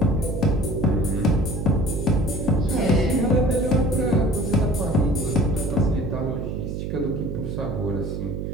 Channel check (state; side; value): noise; right; hum, 4 dB below the sound